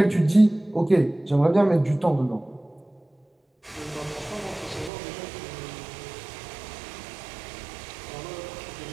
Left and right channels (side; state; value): left; drops out; at 4.9 s